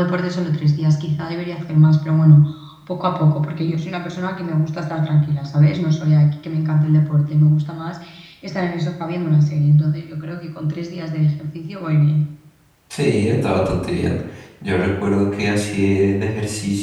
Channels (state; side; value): identical; both; correlation 1.00